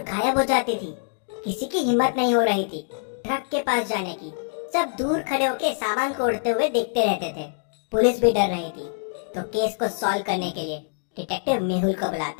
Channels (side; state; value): right; silent; digital silence